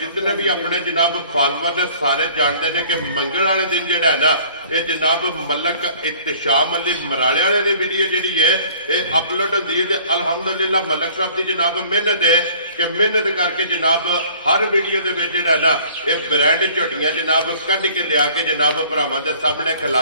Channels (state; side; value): inverted; both; correlation -0.52